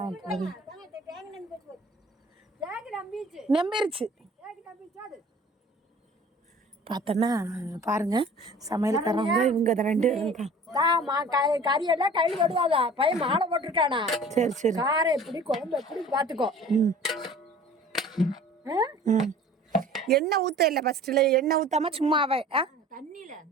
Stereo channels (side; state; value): both; normal; correlation 0.46